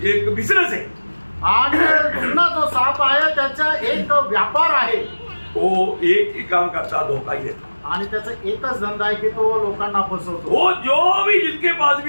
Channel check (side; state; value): both; inverted; correlation -1.00